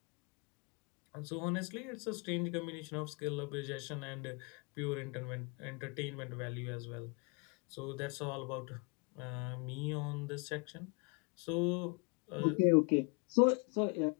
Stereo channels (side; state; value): right; quieter; 33.1 dB